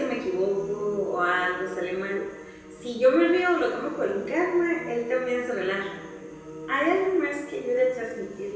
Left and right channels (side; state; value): both; identical; correlation 1.00